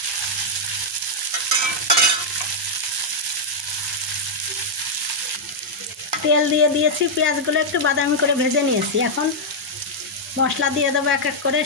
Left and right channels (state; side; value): normal; both; correlation -0.04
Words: তেল দিয়ে দিয়েছি, পেঁয়াজগুলো একটু বাদামি করে ভেজে নিয়েছি। এখন মশলা দিয়ে দেবো এক এক করে।